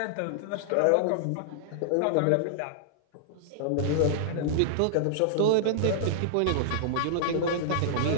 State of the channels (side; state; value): both; different; correlation -0.01